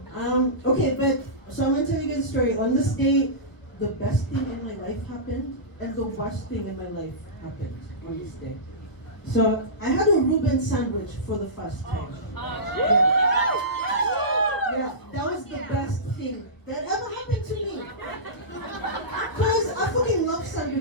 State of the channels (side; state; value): right; late; 1.1 ms